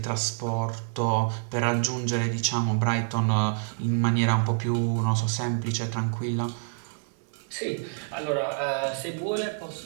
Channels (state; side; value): silent; left; 60 dB below the other